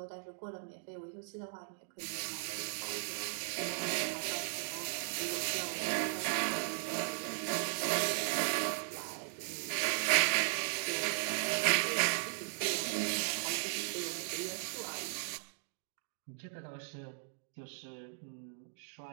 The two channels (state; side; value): silent; left; digital silence